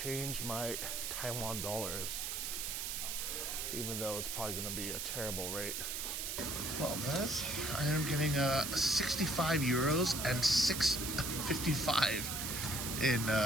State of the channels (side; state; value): right; noise; hiss, 3 dB below the sound